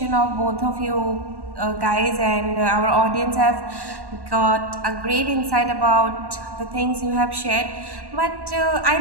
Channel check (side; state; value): left; late; 1.1 ms